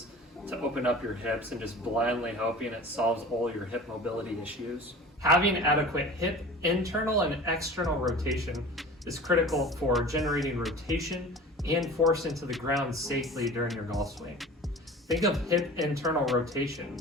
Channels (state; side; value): normal; both; correlation 0.39